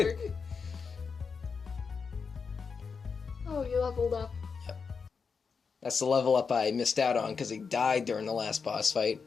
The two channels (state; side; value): quieter; right; 5.5 dB